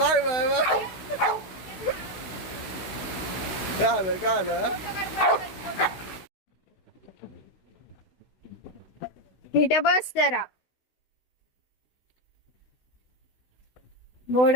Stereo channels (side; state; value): right; late; 16 ms